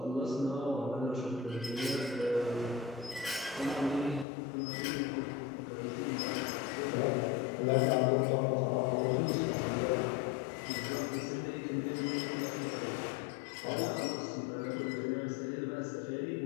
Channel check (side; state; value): right; drops out; at 4.2 s